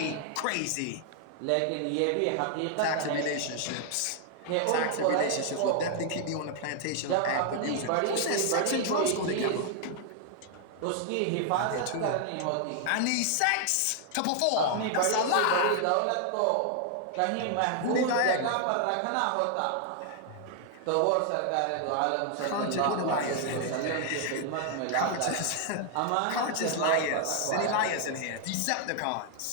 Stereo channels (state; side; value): different; both; correlation 0.00